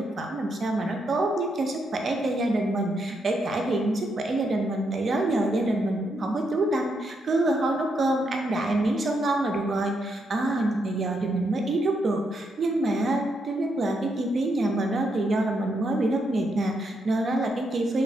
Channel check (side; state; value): both; normal; correlation 0.79